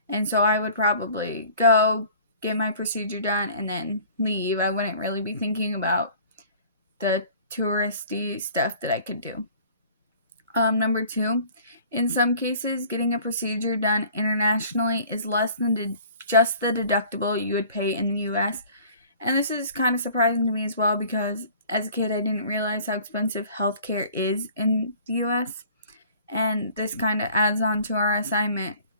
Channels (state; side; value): inverted; both; correlation -0.50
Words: And so I would probably go get my procedure done and then leave. I wouldn't really be thinking about the touristy stuff that I could do. Number two, in some cases, getting a procedure done internationally is less than just the deductible you would pay in the US. And this is kind of surprising to me as well because as a kid, I didn't realize how expensive healthcare is in the US. And this kind of adds on to our assignment